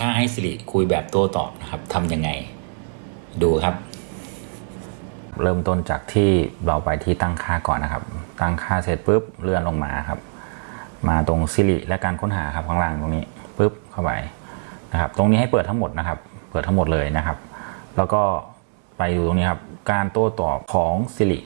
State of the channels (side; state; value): left; silent; 64 dB below the other